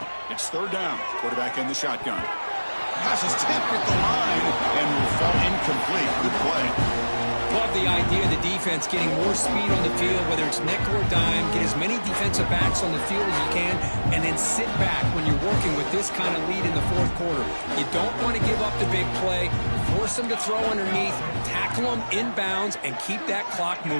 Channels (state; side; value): inverted; both; correlation -1.00